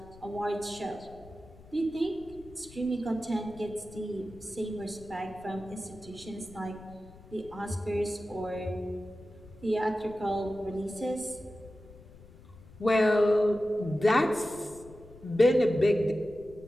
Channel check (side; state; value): left; noise; rumble, 21 dB below the sound